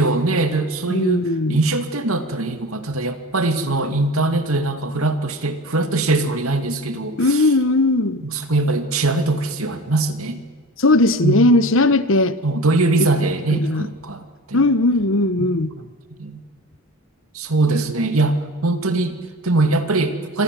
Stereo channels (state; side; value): normal; both; correlation 0.36